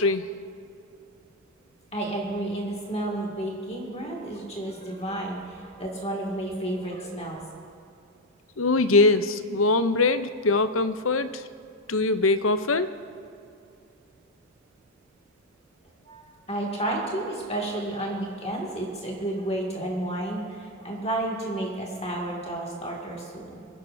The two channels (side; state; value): both; normal; correlation 0.05